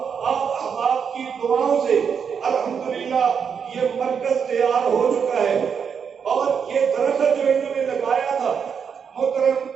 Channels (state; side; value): quieter; left; 6.9 dB